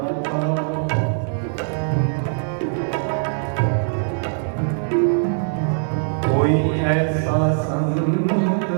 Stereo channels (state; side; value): silent; left; digital silence